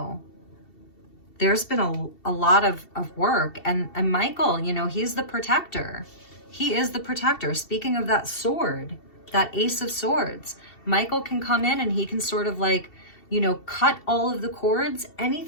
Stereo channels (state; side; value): late; right; 2.7 ms